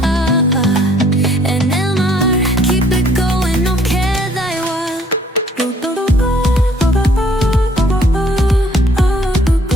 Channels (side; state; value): both; normal; correlation 0.61